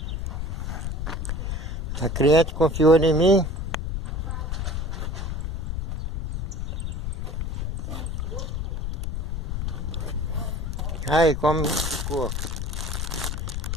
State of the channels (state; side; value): noise; left; rumble, 2 dB below the sound